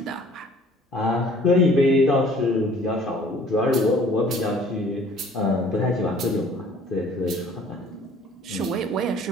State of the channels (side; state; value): both; normal; correlation 0.53